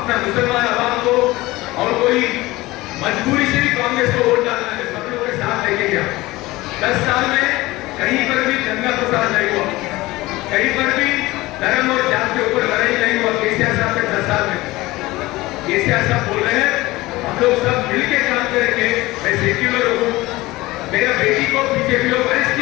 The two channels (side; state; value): right; quieter; 19.5 dB